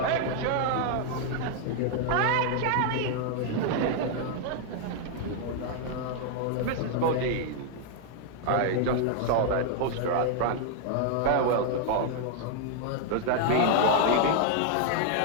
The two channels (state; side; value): different; both; correlation 0.00